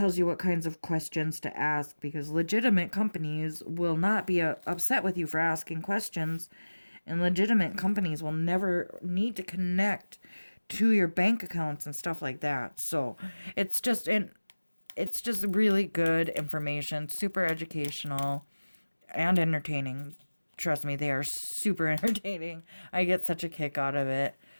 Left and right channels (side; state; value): both; inverted; correlation -1.00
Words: you what kinds of questions to ask, because legitimate companies will not be upset with you for asking questions, and legitimate companies will never need to connect to your bank accounts and stuff like that. So it's just really good information, super educational and entertaining. Trust me, they are super entertaining. I get such a kick out of it.